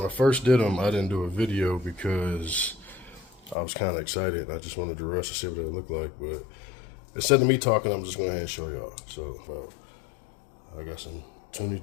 I first did them, I didn't do a video because I was kind of excited and I just wanted to rush to see what it looked like. But instead of me talking, I'm just going to show y'all. So I got some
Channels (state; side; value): drops out; right; at 3.6 s